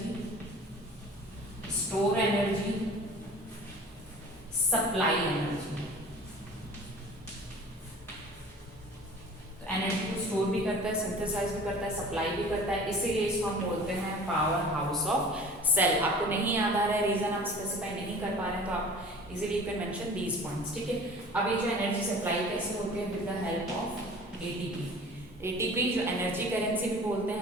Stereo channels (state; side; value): normal; both; correlation 0.44